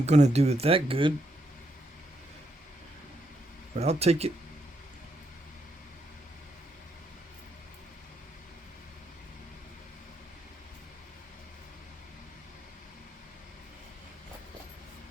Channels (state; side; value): normal; both; correlation 0.78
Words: to do it that good, but I'll take it.